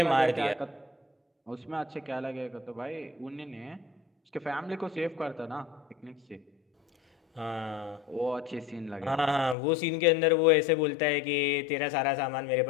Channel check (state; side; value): drops out; right; at 9.6 s